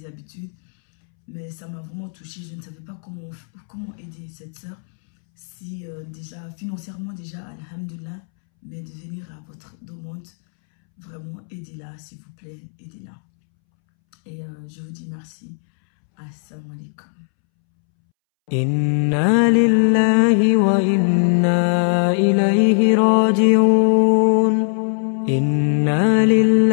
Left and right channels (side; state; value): right; silent; 66 dB below the other